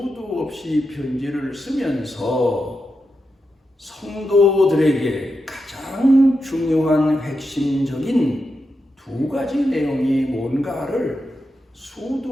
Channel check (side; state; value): both; normal; correlation 0.87